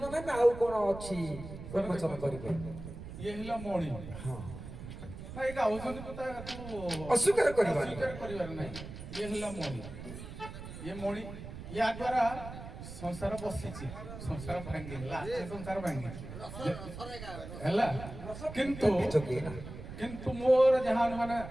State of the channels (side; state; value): right; noise; rumble, 11 dB below the sound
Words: ନା ନା ଆଉ କଣ ଅଛି ଉନ୍ମୋଚନ କରିବେ ଇଏ ହେଲା ମଣି ହଁ ଭାଇ ଗାଉଛନ୍ତି କଥା ତାକୁ ଅସ୍ୱୀକାର କରିବାନି। ଅସ୍ୱୀକାର କରିବାର ନାହିଁ ଇଏ ହେଲା ମଣି ଇଏ ମଣି ୟା ଦ୍ୱାରା ସଂସାର ବସିଛି ସଂସାର ଭାଙ୍ଗିନି ଲାଷ୍ଟ ସଂସାର ଭାଙ୍ଗିଛି ହେଲା କିନ୍ତୁ ଯୋଗୀ ନା କିନ୍ତୁ ମୋର ଯାହା ମାନେ